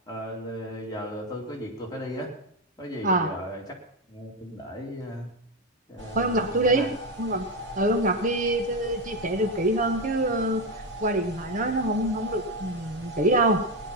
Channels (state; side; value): normal; both; correlation 0.10